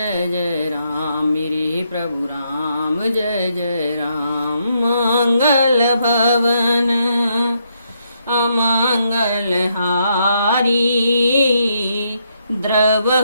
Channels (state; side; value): inverted; both; correlation -0.76